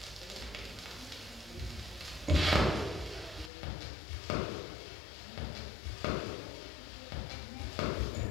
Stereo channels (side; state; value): right; drops out; at 3.5 s